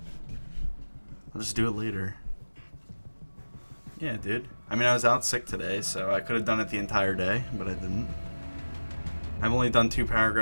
I'll just do it later. Yeah, dude. I mean, I was out sick today, so I could have done it the entire day, but I didn't. I've only done 2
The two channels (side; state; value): both; inverted; correlation -1.00